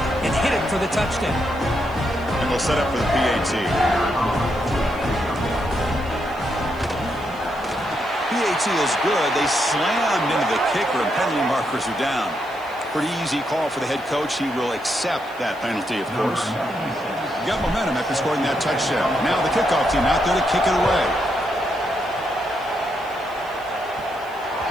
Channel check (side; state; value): right; noise; hiss, 26 dB below the sound